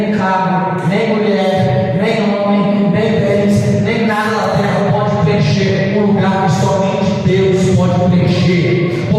carro, nem mulher, nem homem, nem bens, nem nada da terra pode preencher o lugar que somente Deus pode preencher,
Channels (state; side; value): identical; both; correlation 1.00